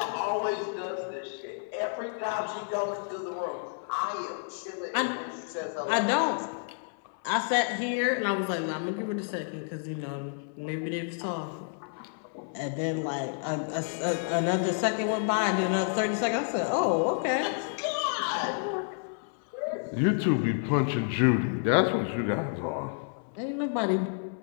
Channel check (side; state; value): right; silent; 58 dB below the other